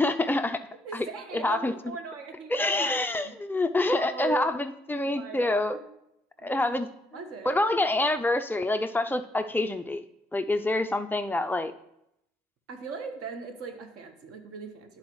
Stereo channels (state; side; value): normal; both; correlation 0.74